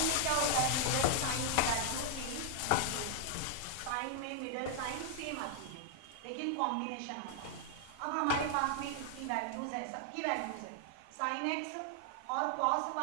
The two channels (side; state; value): both; different; correlation 0.00